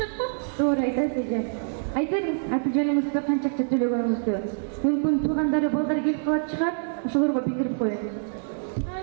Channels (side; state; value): left; silent; digital silence